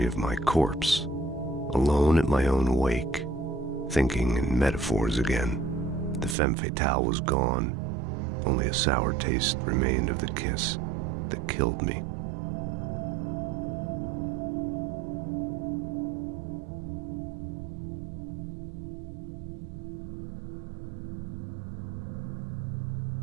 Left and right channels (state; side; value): drops out; left; at 6.4 s